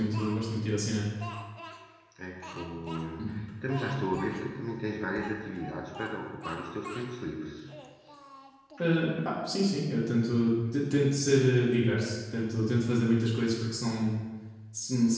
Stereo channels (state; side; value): identical; both; correlation 1.00